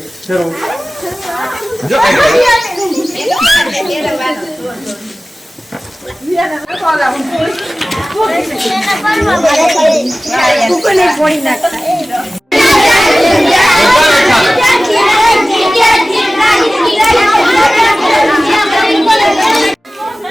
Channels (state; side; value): normal; both; correlation 0.97